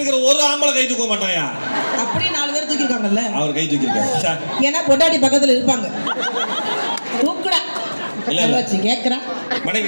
ஒரு ஆம்பளை கை தூக்க மாட்டாயா? அப்படி 4 பேர் தூக்கிருக்காங்கல்ல, அவர் கை தூக்கிருக்காரு. ஏன்னா பொண்டாட்டி பக்கத்துல இருப்பாங்க. தூக்குடா இல்ல வச்சு கேக்குறேன். மனைவி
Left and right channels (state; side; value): inverted; both; correlation -1.00